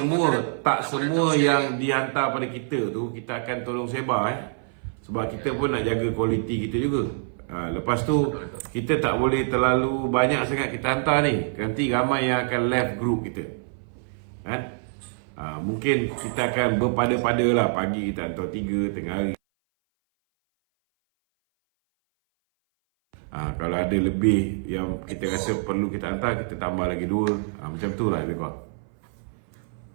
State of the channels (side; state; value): left; silent; 58 dB below the other